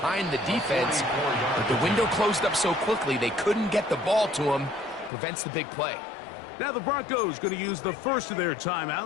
the defense, but the window closed up so quickly they couldn't get the ball to him. Prevents the big play. Now the Broncos going to use the first of their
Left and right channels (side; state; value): right; drops out; at 5.1 s